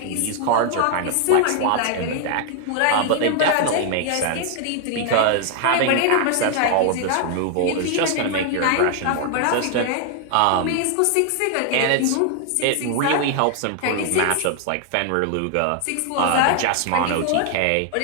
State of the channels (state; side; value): different; both; correlation 0.00